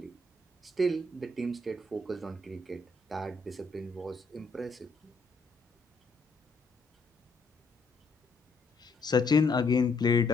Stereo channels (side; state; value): right; quieter; 3.4 dB